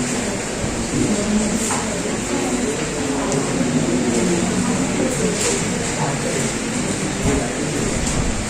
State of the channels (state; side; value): identical; both; correlation 1.00